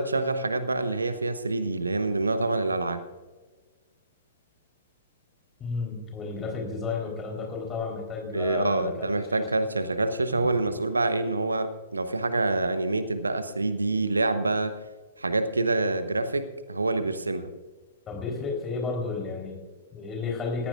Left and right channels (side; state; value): both; inverted; correlation -0.72